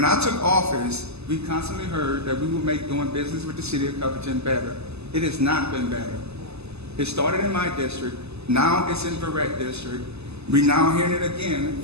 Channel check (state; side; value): late; left; 0.79 ms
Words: I took office, we constantly heard that we would make doing business with the city of Covington better. It has not been better. It started in my district. Now it's in Verrett district. We're now hearing it again